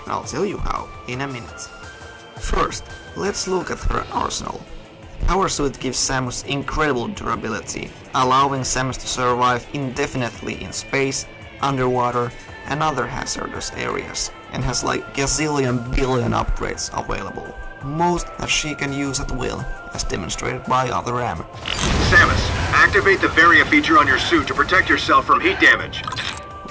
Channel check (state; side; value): identical; both; correlation 1.00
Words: and I'll tell you how in a minute. First, let's look at her arsenal. Power Suit gives Samus incredible durability, allowing Samus to survive indefinitely in space, underwater, and other hazardous areas, and has like gazillion billion upgrades available, most that she can use at will, as demonstrated by other M. Samus, activate the Varia feature on your suit to protect yourself from heat damage.